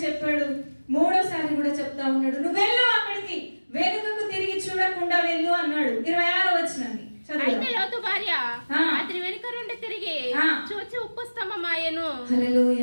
చెప్పాడు, 3వసారి కూడా చెప్తా ఉన్నాడు. నువ్వు వెళ్ళు అక్కడికి, వెనుకకు తిరిగి చూడకుండా వెళ్ళు అన్నాడు. 26వ వచనాన్ని అయితే లోతు భార్య అతని వెనుక నుండి తిరిగి చూచి ఉప్పు స్తంభమాయెను.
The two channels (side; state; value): both; inverted; correlation -1.00